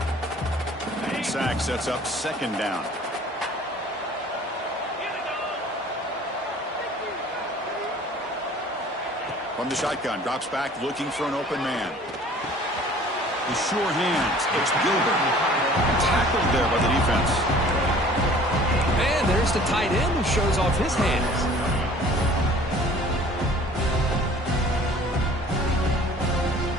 And sack sets up 2nd down. From the shotgun, drops back looking for an open man. The sure hands, it's Gilbert. Tackled there by the defense. And there's the tight end who shows off his hands.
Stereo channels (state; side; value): normal; both; correlation 0.50